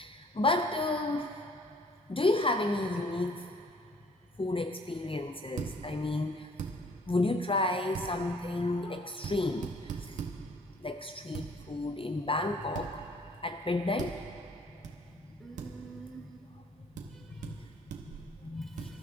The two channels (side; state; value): both; normal; correlation 0.58